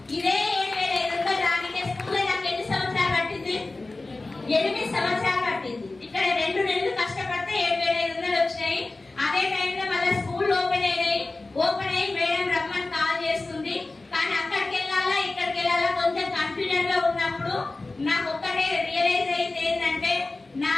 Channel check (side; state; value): right; quieter; 3.2 dB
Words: ఇదే 7,500 రానికే స్కూల్లో నాకు ఎన్ని సంవత్సరాలు పట్టింది? 8 సంవత్సరాలు పట్టింది. ఇక్కడ 2 నెలలు కష్టపడితే 7,500 వచ్చినాయి. అదే టైంలో మళ్ళీ స్కూల్ ఓపెన్ అయ్యి మేడం రమ్మని కాల్ చేస్తుంది. కానీ అక్కడికి వెళ్ళాలా ఇక్కడికి వెళ్ళాలా కొంచెం కన్ఫ్యూజన్ లో ఉన్నప్పుడు నాకు ఒక్కటే రియలైజ్ అయింది ఏంటంటే, నా